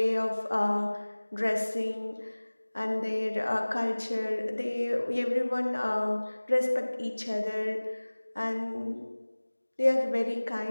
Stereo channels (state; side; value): inverted; both; correlation -1.00